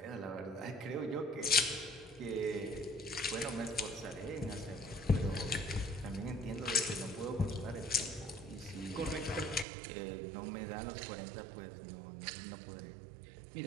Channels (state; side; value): drops out; left; at 9.7 s